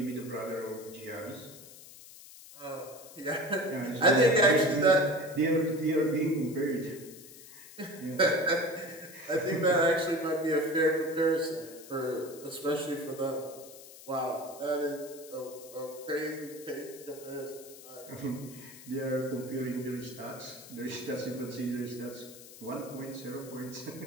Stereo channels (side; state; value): left; noise; hiss, 17 dB below the sound